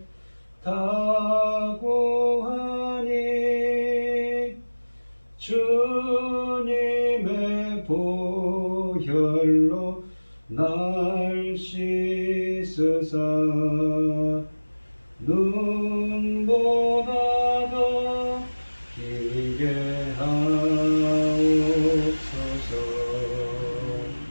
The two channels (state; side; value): inverted; both; correlation -1.00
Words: 다 구하니 주님의 보혈로 날 씻으사 눈보다 더 기게 하옵소서.